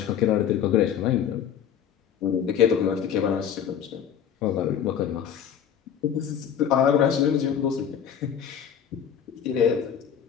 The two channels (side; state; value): right; quieter; 8.6 dB